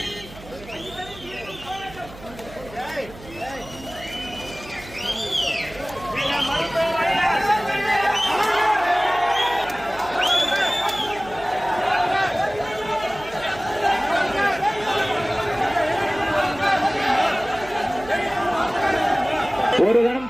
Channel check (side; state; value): right; noise; hum, 18 dB below the sound